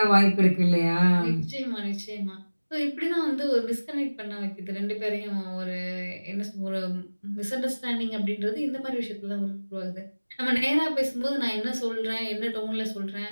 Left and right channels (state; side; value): inverted; both; correlation -1.00